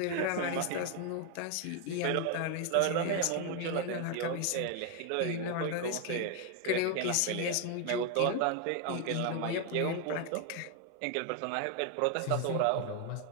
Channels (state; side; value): different; both; correlation 0.01